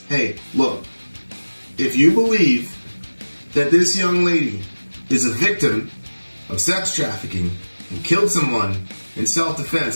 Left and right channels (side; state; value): both; inverted; correlation -1.00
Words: hey, look. If you believe that this young lady is a victim of sex trafficking and killed someone in